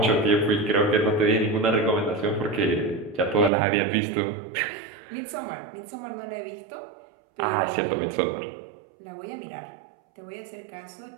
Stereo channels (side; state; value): left; drops out; at 3.5 s